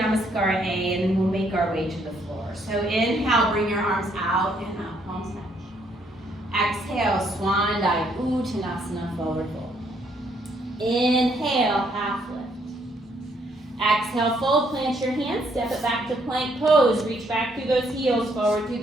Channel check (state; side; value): normal; both; correlation 0.70